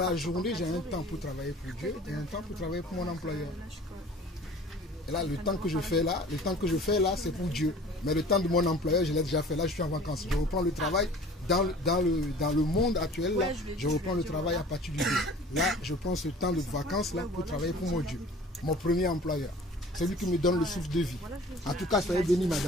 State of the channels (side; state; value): both; normal; correlation 0.46